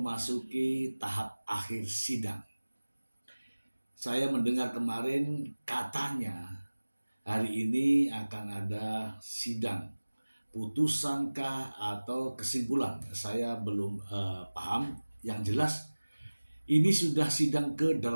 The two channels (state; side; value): inverted; both; correlation -1.00